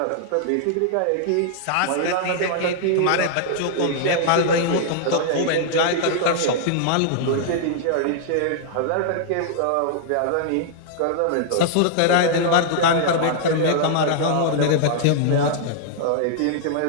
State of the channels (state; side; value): different; both; correlation -0.01